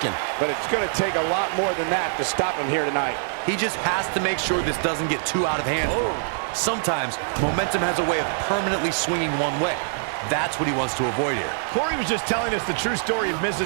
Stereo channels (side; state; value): left; silent; digital silence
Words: But it's going to take a lot more than that to stop him here tonight. He just has to make sure this doesn't get too out of hand for him. Sometimes, momentum has a way of permanently swinging one way. That's what he wants to avoid here. Corey was just telling us the true story of